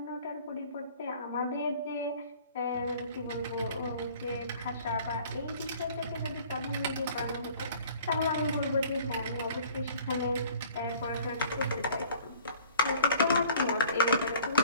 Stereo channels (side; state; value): both; inverted; correlation -0.50